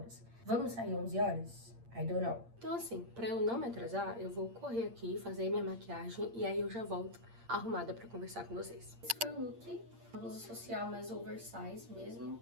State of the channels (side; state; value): left; late; 8.7 ms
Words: Vamos sair 11 horas? I don't know. Então, assim, pra eu não me atrasar, eu vou correr aqui, fazer minha maquiagem e aí eu já volto arrumada pra conversar com vocês. Esse foi o look. Uma blusa social mais oversize mesmo,